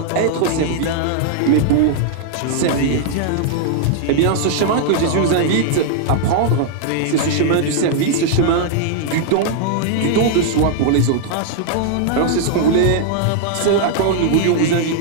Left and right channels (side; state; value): both; different; correlation -0.01